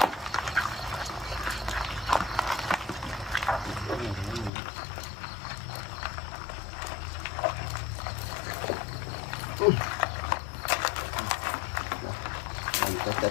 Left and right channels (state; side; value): drops out; right; at 4.5 s